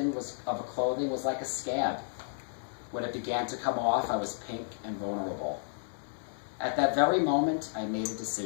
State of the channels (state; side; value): silent; right; digital silence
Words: of clothing was like a scab. When it began to come off, I was pink and vulnerable. At that very moment, I made a